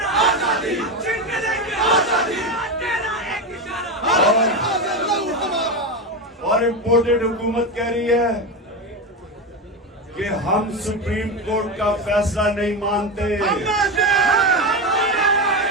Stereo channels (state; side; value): normal; both; correlation 0.16